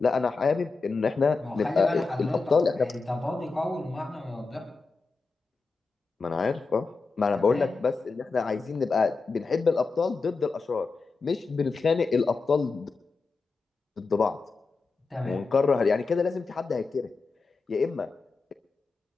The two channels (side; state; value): right; quieter; 4.2 dB